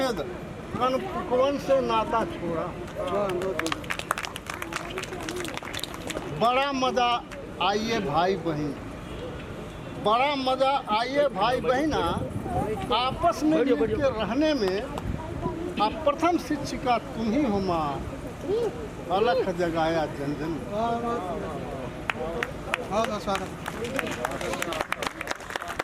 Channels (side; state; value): both; identical; correlation 1.00